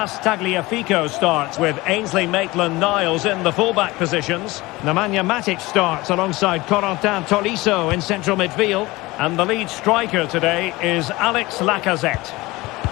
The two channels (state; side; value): quieter; right; 20.9 dB